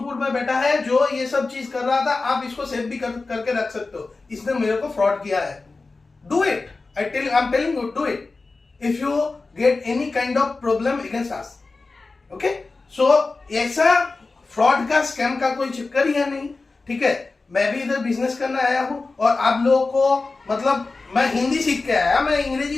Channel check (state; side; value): quieter; right; 3.7 dB